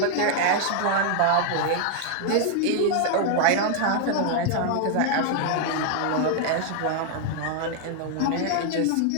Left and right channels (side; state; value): both; different; correlation 0.00